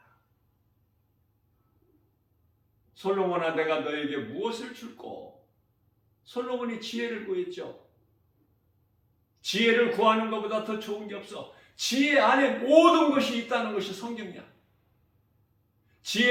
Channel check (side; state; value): both; identical; correlation 1.00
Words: 솔로몬아, 내가 너에게 무엇을 줄꼬? 솔로몬이 지혜를 구했죠. 지혜를 구하는 것보다 더 좋은 게 없어. 지혜 안에 모든 것이 있다는 것이 성경이야.